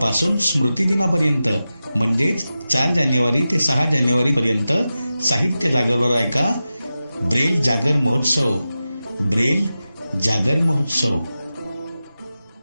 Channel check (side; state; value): both; inverted; correlation -0.93